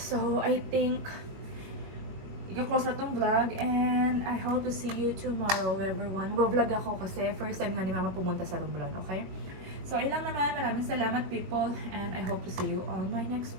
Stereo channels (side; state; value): left; late; 21 ms